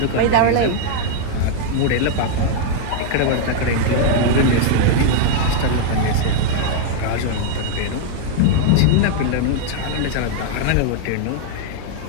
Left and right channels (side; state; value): both; different; correlation 0.00